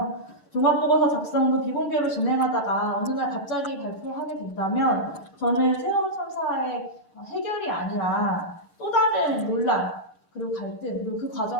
종합보고서 작성도 비공개로 진행하다가 어느 날 갑자기 발표하게 된다면 저는 세월호 참사의 해결이 아니라 또 다른 논란 그리고 갈등 그리고 그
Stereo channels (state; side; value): late; right; 11 ms